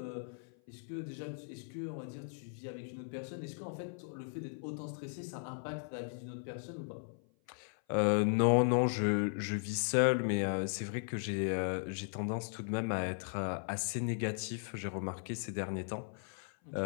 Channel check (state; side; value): silent; right; 53 dB below the other